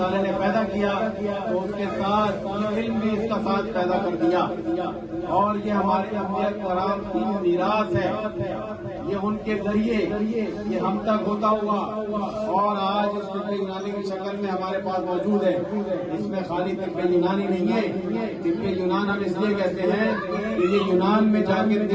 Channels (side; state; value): both; identical; correlation 1.00